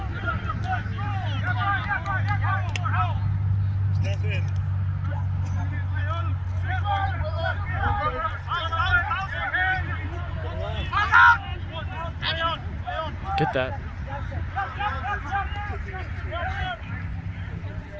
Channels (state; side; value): identical; both; correlation 1.00